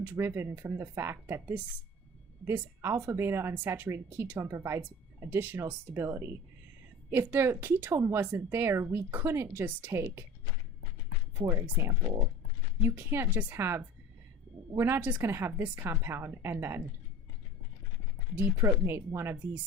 from the fact that this alpha beta unsaturated ketone provides additional stability. If the ketone wasn't there, we couldn't just take, for example, you can't just have, we're not just going to have this compound and then deprotonate one of these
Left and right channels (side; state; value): both; normal; correlation 0.38